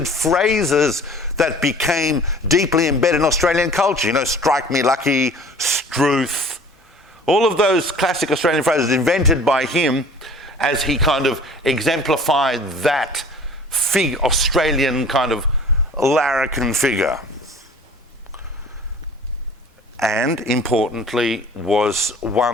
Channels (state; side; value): normal; both; correlation 0.47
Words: phrases that became deeply embedded in Australian culture. Strike me lucky, struth, all of those classic Australian phrases invented by him as he kind of exemplified that Australian kind of larrikin figure. And importantly, was